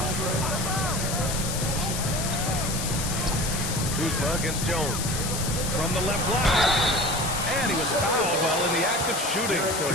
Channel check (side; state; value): left; noise; hiss, 4 dB below the sound